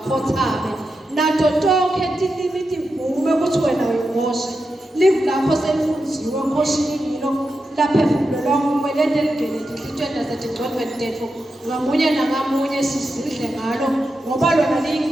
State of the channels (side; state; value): both; normal; correlation 0.88